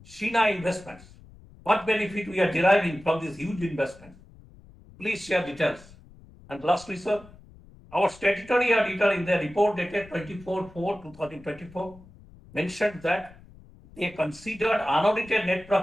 Sheena Investments. What benefit we are deriving from this huge investment? Please share details. And lastly, sir, our statutory auditor in their report dated 24/4/2024 mentioned that they considered unaudited net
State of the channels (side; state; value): left; noise; rumble, 23 dB below the sound